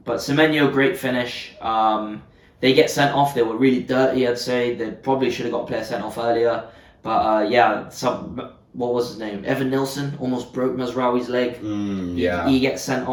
Semenyo, great finish. They get sent off. They were really dirty, I'd say. They probably should have got a player sent off earlier. But what was his name? Evan Nilsson almost broke Mazraoui's leg. He gets sent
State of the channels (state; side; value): identical; both; correlation 1.00